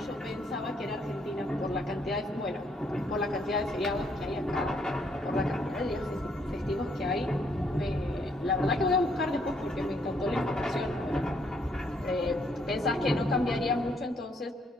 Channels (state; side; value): normal; both; correlation 0.70